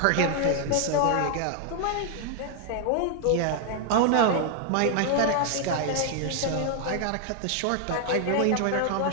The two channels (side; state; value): both; different; correlation 0.00